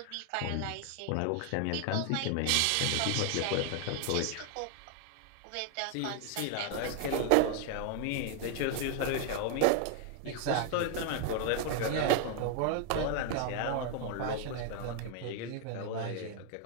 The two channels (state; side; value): different; both; correlation 0.00